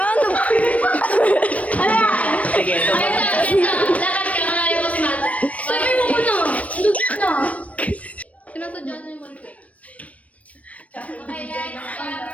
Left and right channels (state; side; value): late; right; 0.066 ms